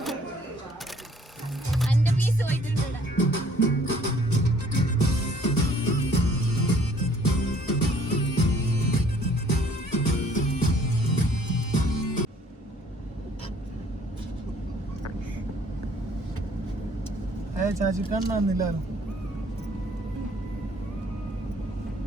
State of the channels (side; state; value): both; normal; correlation 0.59